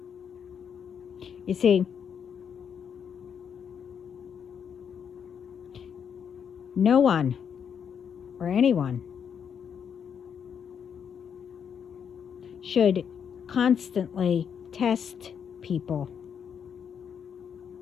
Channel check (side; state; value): right; quieter; 7.6 dB